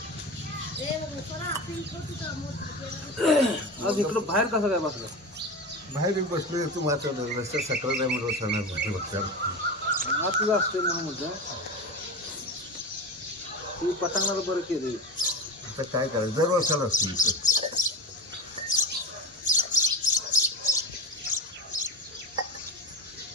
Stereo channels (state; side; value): normal; both; correlation 0.24